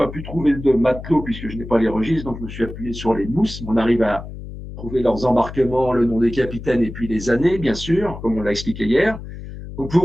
trouver de matelots puisque je n'ai pas les registres, donc je me suis appuyé sur les mousses. On arrive à trouver leurs embarquements, le nom des capitaines et puis les années, bien sûr, comme on l'a expliqué hier. Donc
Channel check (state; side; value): noise; left; hum, 11 dB below the sound